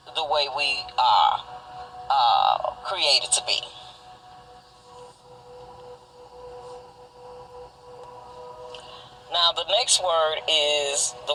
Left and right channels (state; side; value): identical; both; correlation 1.00